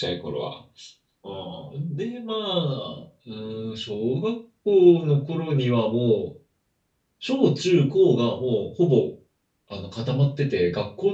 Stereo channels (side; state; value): both; identical; correlation 1.00